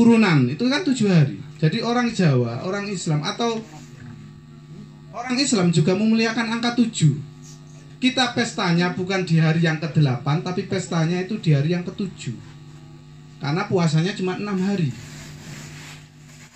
itu kan 7 hari. Jadi orang Jawa, orang Islam atau orang Islam juga memuliakan angka 7. Kita pestanya bukan di hari yang ke-8, tapi pestanya itu di hari yang ke-7. Karena puasanya cuma 6 hari.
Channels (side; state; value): both; identical; correlation 1.00